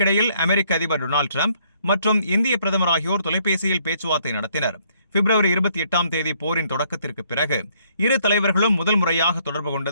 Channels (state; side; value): inverted; both; correlation -0.67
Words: அமெரிக்க அதிபர் டொனால்டு டிரம்ப் மற்றும் இந்திய பிரதமர் ஆகியோர் தொலைபேசியில் பேச்சுவார்த்தை நடத்தினர். பிப்ரவரி 28ஆம் தேதி போரின் தொடக்கத்திற்கு பிறகு இரு தலைவர்களும் முதல் முறையாக தொடர்பு